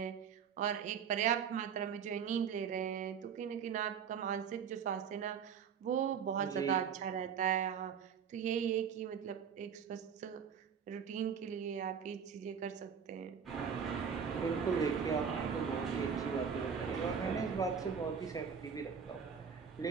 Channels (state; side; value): quieter; left; 7.1 dB